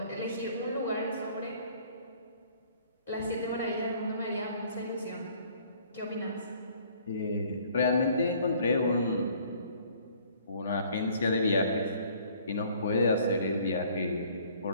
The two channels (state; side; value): inverted; both; correlation -0.57